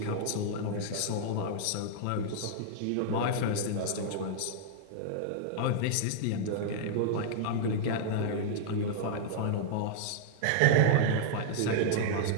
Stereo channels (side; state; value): both; different; correlation -0.01